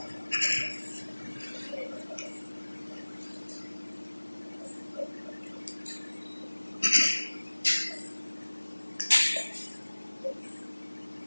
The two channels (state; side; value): inverted; both; correlation -1.00